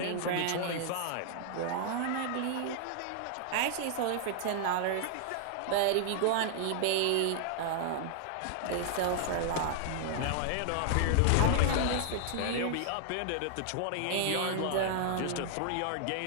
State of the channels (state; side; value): different; both; correlation 0.00